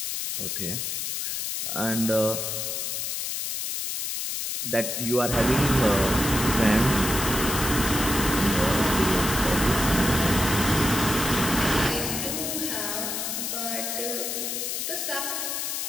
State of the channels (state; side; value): noise; left; hiss, 2 dB below the sound